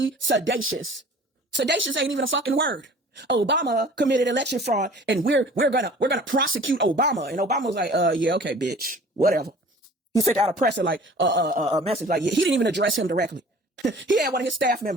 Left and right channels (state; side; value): normal; both; correlation 0.47